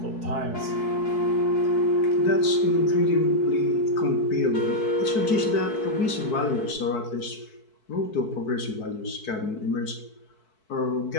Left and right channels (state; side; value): late; right; 4.6 ms